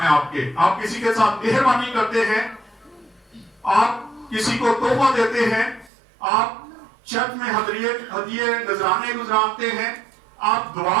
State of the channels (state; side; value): drops out; left; at 5.9 s